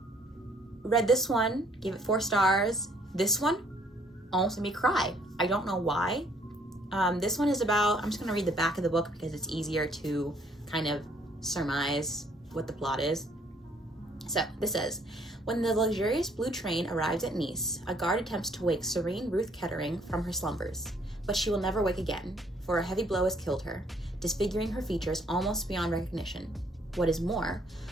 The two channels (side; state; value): both; normal; correlation 0.64